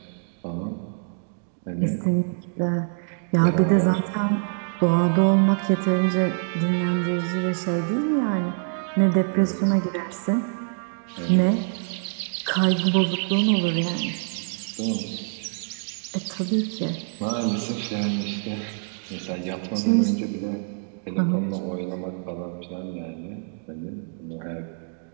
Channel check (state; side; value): silent; left; digital silence